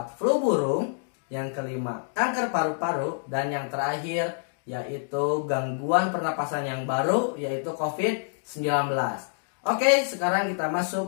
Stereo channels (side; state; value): right; silent; digital silence